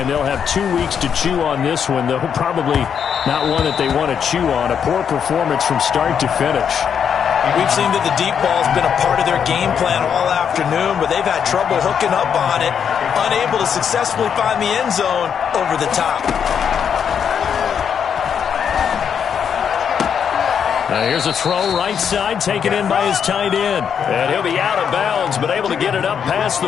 They'll have 2 weeks to chew on this one, though probably not one that they want to chew on. A poor performance from start to finish. We've seen that the deep ball's been a part of their game plan all afternoon, but they've had trouble hooking up on it, unable to successfully find the end zone over the top. Now here's a throw right side, taken in by his tight end. And he'll be out of bounds, but able to get it up past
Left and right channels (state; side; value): quieter; right; 7.6 dB